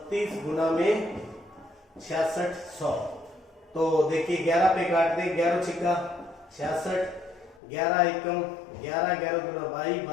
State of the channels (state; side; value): drops out; right; at 7.6 s